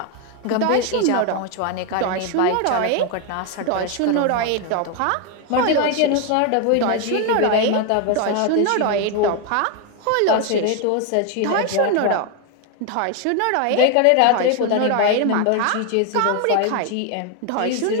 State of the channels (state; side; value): different; both; correlation 0.01